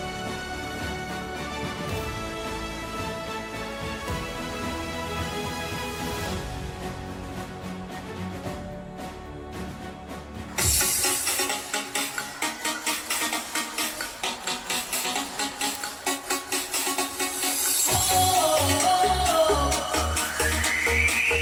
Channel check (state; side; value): identical; both; correlation 1.00